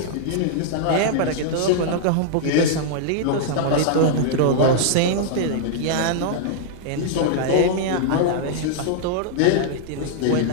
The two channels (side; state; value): both; different; correlation -0.01